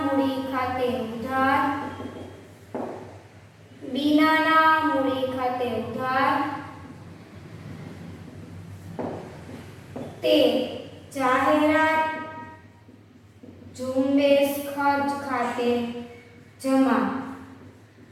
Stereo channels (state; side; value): identical; both; correlation 1.00